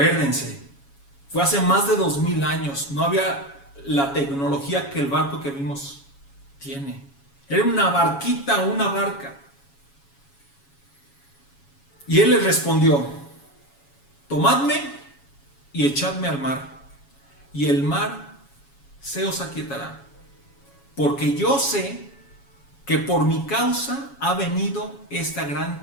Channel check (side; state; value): right; late; 7.2 ms